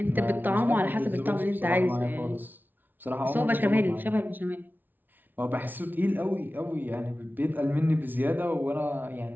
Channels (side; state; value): left; late; 0.087 ms